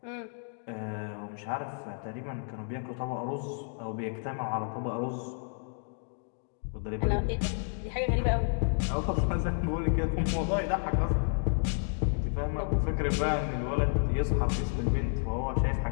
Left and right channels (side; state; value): right; silent; 57 dB below the other